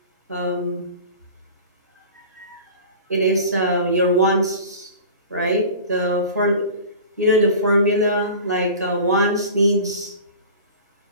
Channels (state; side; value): inverted; both; correlation -0.38